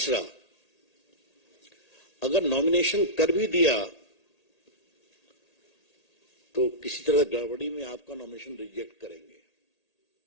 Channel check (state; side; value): late; right; 1.8 ms